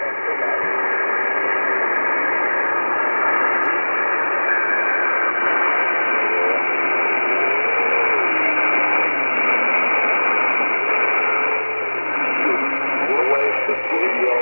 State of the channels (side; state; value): both; inverted; correlation -1.00